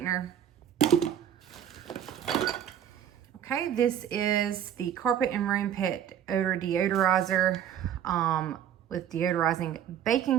Okay, this is the Carpet and Room Pet Odor Deodorizer with deodorizing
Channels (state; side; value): quieter; left; 9.8 dB